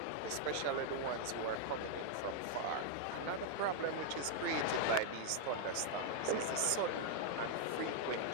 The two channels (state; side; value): different; both; correlation 0.00